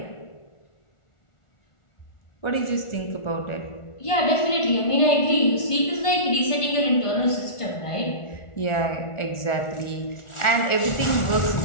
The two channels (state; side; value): late; right; 1.4 ms